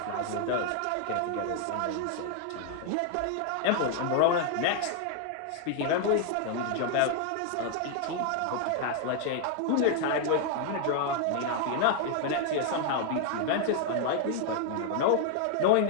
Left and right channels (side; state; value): both; different; correlation 0.00